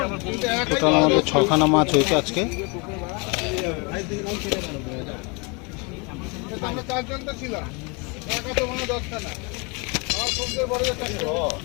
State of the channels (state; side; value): quieter; right; 30.7 dB